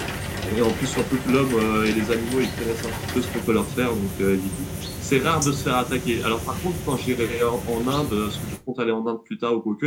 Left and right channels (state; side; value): identical; both; correlation 1.00